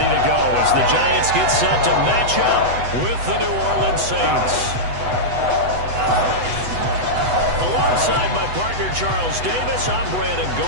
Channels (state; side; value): late; left; 8.0 ms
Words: to go as the Giants get set to match up with the New Orleans Saints. Alongside my partner, Charles Davis, I'm Brandon